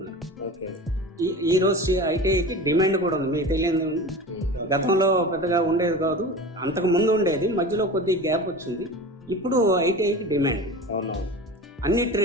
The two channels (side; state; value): both; normal; correlation 0.33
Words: ఓకే. ఈ రోజు ఐటీఐకి డిమాండ్ కూడా ఉంది, మీకు తెలియదు. గతంలో పెద్దగా ఉండేది కాదు, అంతకు ముందు ఉండేది, మధ్యలో కొద్ది గ్యాప్ వచ్చింది. ఇప్పుడు ఐటీఐకి డిమాండ్ అవునవును. అన్ని